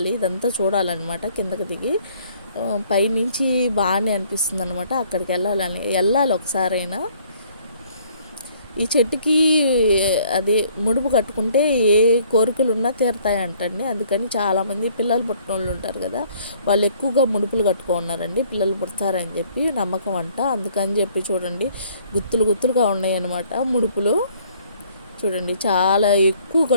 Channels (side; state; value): both; inverted; correlation -0.61